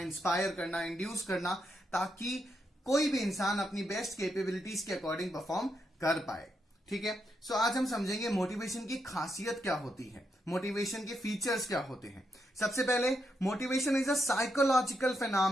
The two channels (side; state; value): both; normal; correlation 0.81